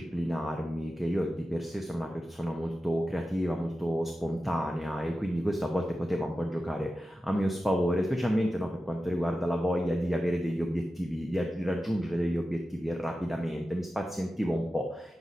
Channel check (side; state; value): both; normal; correlation 0.93